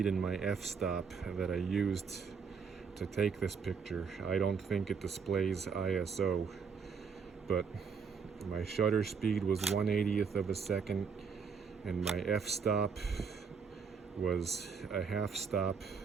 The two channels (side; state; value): left; quieter; 5.8 dB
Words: and my f-stop that I used to take this picture. I don't think it displays ISO, but my shutter speed was 1/80th of a second, and my f-stop was a half stop